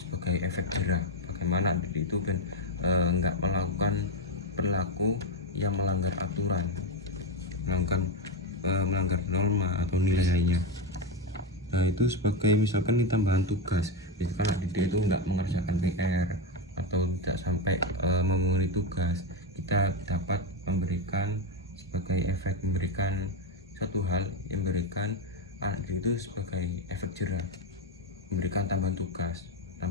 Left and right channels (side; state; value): both; normal; correlation 0.09